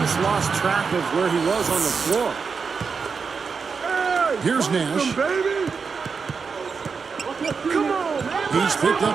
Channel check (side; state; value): left; quieter; 5.4 dB